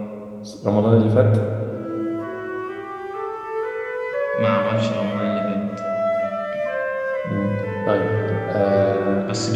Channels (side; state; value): both; identical; correlation 1.00